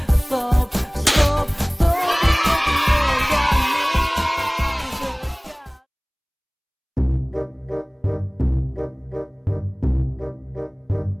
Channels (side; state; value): both; identical; correlation 1.00